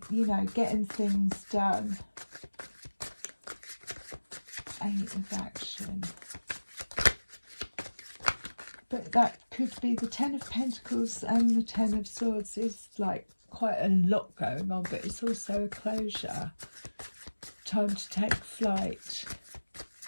you know, getting things done. 8 of action. But that could be the 10 of Pentacles and the 10 of Swords is like quite a lot going on, but it's also a closure. Time to take flight.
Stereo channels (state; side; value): inverted; both; correlation -1.00